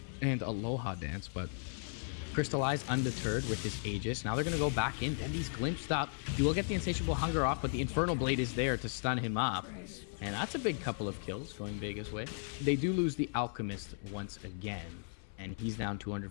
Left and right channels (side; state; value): right; silent; 54 dB below the other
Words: and Aloha Dance, but Crystallize undeterred with his Aegis. Now they're going to go back in. Dendi's glimpsed up. He will get the Insatiable Hunger off, but the Infernal Blade is there to stun him up. And that's a big couple of kills going Vega's way. They do lose the Alchemist once again, and he's down